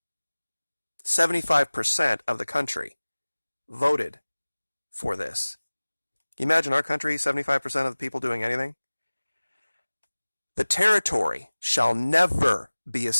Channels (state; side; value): inverted; both; correlation -1.00